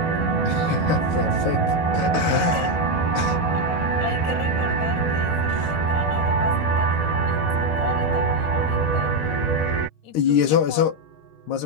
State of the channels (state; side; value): late; right; 13 ms